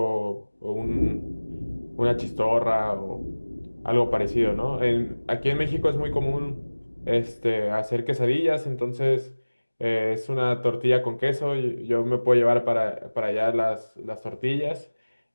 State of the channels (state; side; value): inverted; both; correlation -1.00